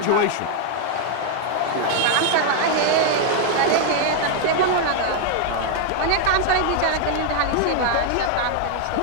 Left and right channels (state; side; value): different; both; correlation 0.00